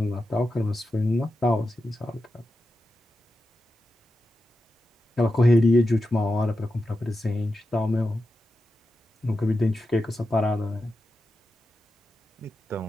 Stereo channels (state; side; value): normal; both; correlation 0.90